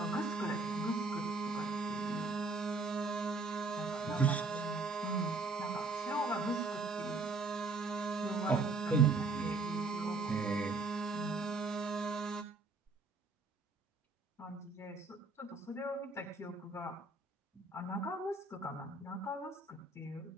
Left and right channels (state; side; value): quieter; left; 3.5 dB